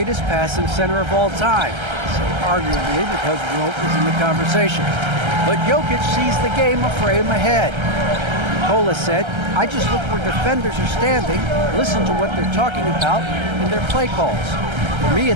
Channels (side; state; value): left; late; 1.3 ms